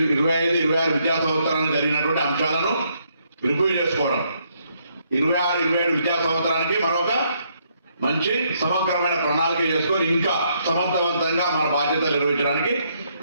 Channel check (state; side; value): inverted; both; correlation -0.73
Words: విద్యా సంవత్సరానికి జరిగినటువంటి అంశాలను రివ్యూ చేసుకోవడం, 26-27 విద్యా సంవత్సరానికి మరొక మంచి సమగ్రమైన ప్రణాళిక చేసుకొని ఇంకా సమర్థవంతంగా మన బాధ్యతలు నిర్వహించడానికి